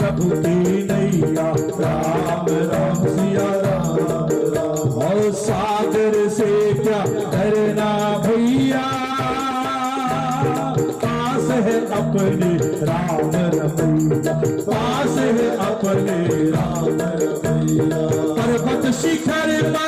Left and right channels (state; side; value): identical; both; correlation 1.00